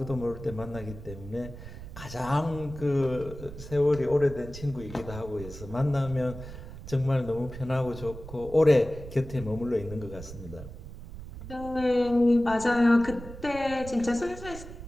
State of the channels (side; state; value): right; noise; rumble, 13 dB below the sound